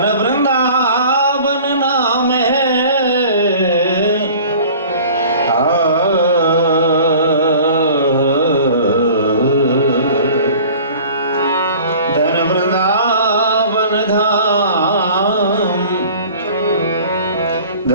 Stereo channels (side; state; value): both; inverted; correlation -0.45